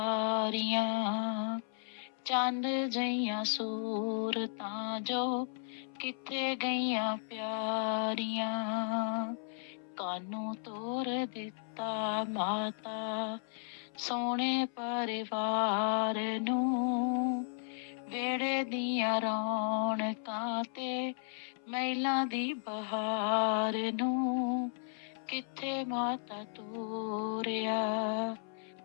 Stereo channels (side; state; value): right; silent; 55 dB below the other